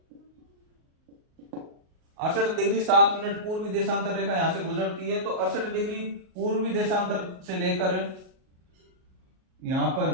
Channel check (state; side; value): late; left; 38 ms